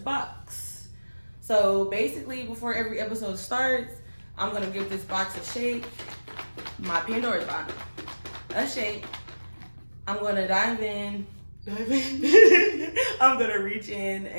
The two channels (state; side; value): inverted; both; correlation -1.00